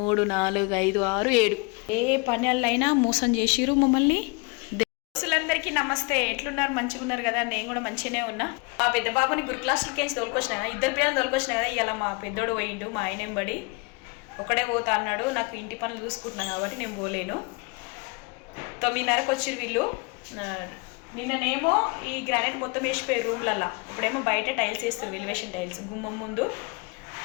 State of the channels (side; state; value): right; quieter; 30.2 dB